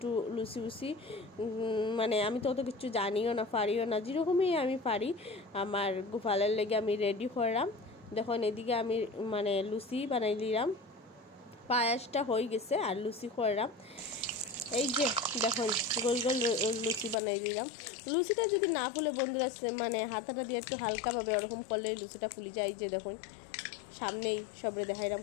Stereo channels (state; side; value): drops out; right; at 17.2 s